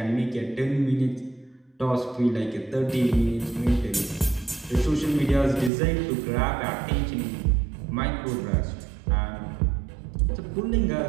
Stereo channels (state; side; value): drops out; left; at 5.7 s